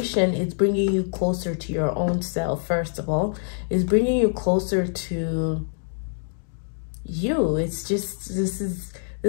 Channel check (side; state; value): right; silent; digital silence